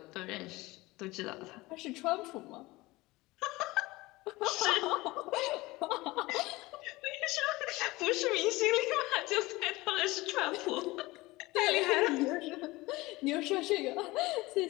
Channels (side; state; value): right; quieter; 20.7 dB